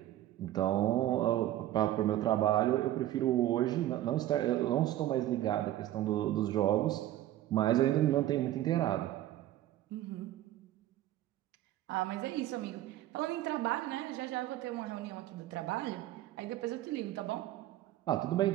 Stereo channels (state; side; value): quieter; left; 13.9 dB